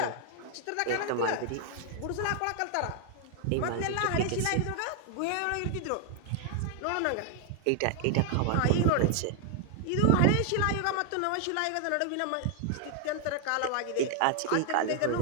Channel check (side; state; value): both; different; correlation 0.00